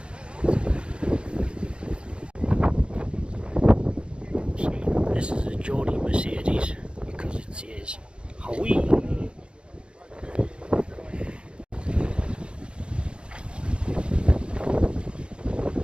Geordie Mercedes because it says Howie.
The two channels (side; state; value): left; late; 0.055 ms